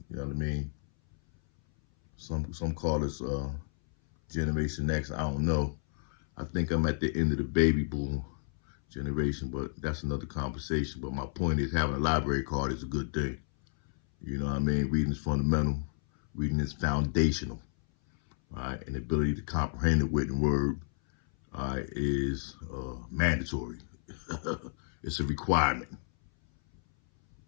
You know what I mean? Some call us Generation X. I don't know. I think I'm at the end of the baby boom generation, but that's another conversation. But my point is, having a library card is a good thing. You know what I mean? Reading is fundamental. Reading is foundational. All right? And the ability to comprehend the written word, all right, is mandatory. It's a requirement.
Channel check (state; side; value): silent; right; 57 dB below the other